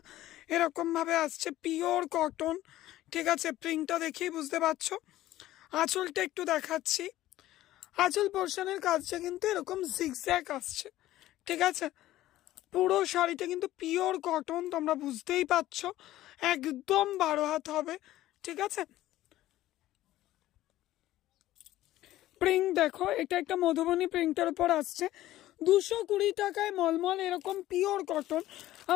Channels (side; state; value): right; quieter; 14.9 dB